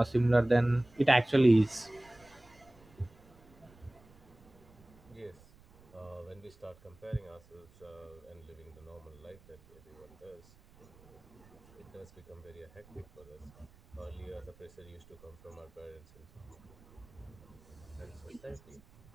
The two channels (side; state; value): right; noise; rumble, 25 dB below the sound